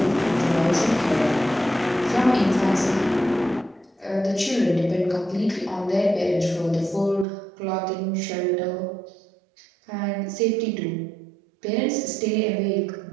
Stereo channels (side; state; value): left; drops out; at 7.2 s